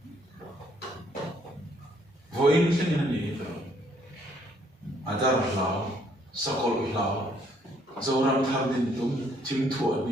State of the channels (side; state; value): both; normal; correlation 0.66